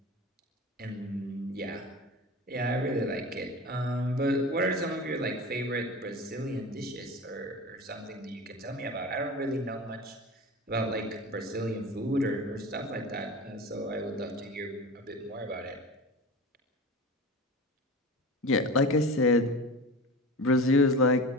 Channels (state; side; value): normal; both; correlation 0.32